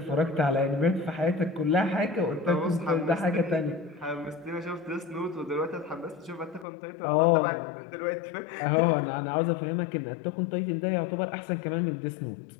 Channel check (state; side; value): drops out; right; at 6.7 s